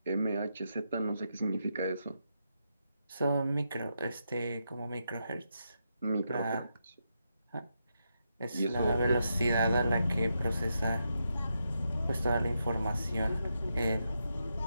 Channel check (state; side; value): inverted; both; correlation -0.83